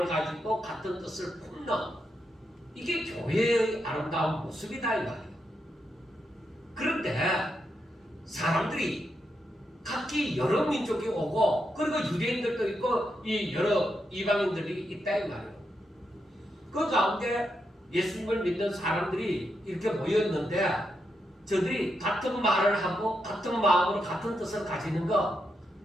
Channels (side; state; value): both; normal; correlation 0.83